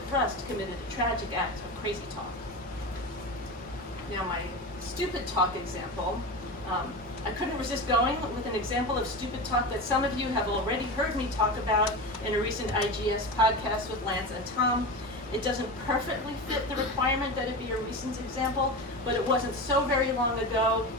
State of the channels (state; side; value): normal; both; correlation 0.25